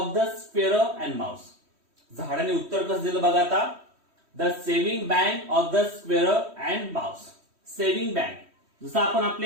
the squirrel and mouse. झाडाने उत्तर कसं दिलं बघा आता, the saving bank of the squirrel and mouse. Saving bank जसं आपण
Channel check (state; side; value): late; left; 3.1 ms